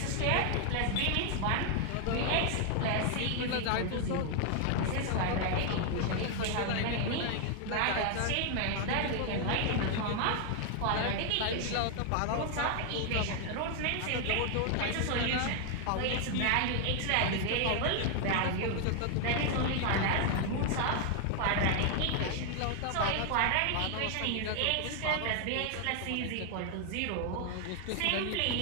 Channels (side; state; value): both; different; correlation 0.00